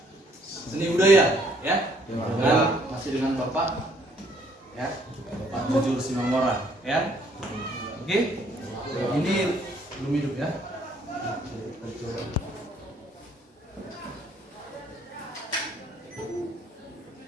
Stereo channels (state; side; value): normal; both; correlation 0.64